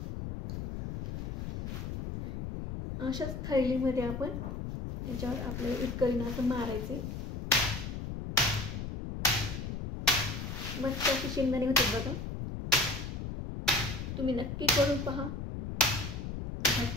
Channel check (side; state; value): left; noise; rumble, 5 dB below the sound